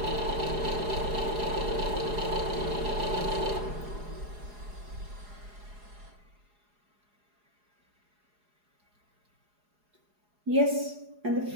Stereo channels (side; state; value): left; late; 4.8 ms